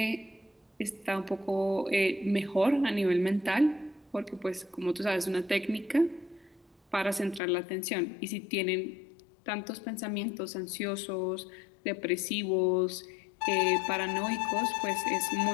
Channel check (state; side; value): drops out; right; at 7.4 s